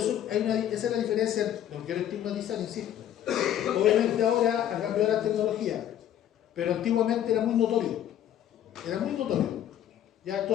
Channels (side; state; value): right; quieter; 11.0 dB